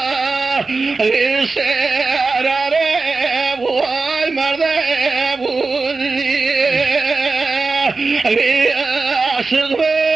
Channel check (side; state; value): left; quieter; 4.0 dB